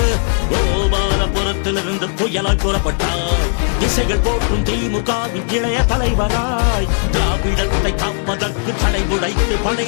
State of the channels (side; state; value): right; silent; 63 dB below the other